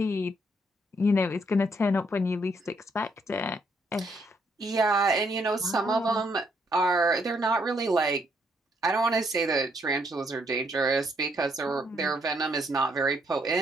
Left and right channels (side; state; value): both; normal; correlation 0.72